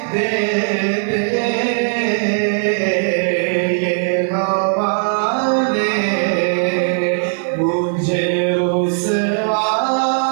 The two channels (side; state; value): left; silent; 63 dB below the other